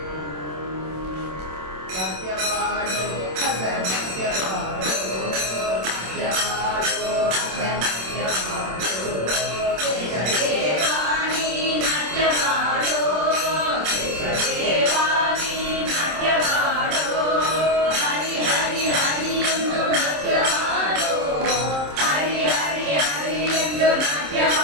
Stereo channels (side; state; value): left; late; 27 ms